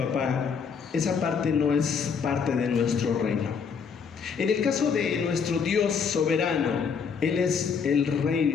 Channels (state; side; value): quieter; right; 6.1 dB